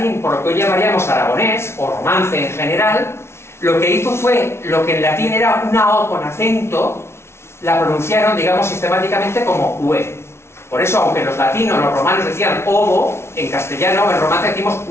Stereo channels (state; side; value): late; right; 0.12 ms